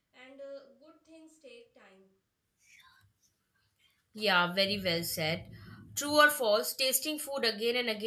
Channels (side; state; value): both; identical; correlation 1.00